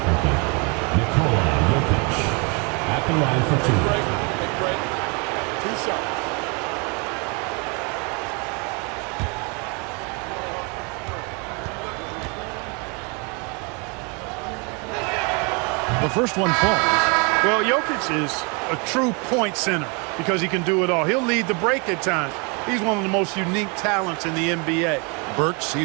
Jokic at the line for 2. Take a break. 2 shots. The first one falls. Well, Jokic is a true point center because he can do it all. He'll lead the break at times. He's one of the most unique talents in the NBA. Burks,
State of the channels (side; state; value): left; quieter; 32.4 dB